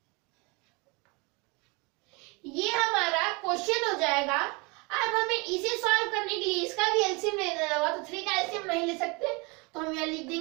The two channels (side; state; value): left; quieter; 28.5 dB